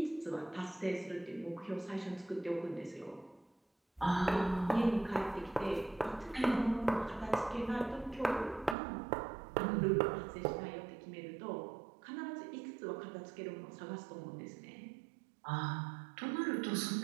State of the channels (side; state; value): left; drops out; at 8.8 s